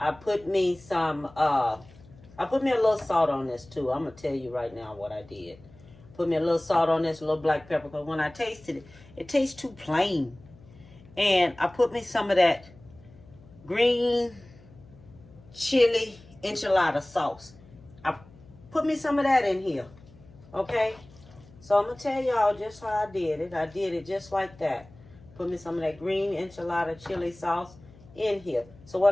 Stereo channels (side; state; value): left; noise; hum, 23 dB below the sound